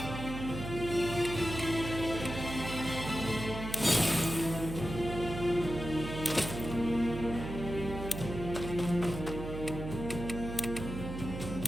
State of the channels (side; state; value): right; noise; hum, 7 dB below the sound